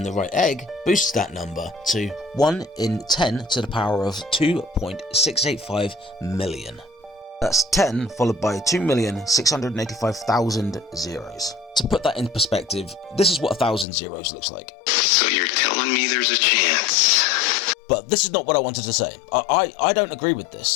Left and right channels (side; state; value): right; drops out; at 13.9 s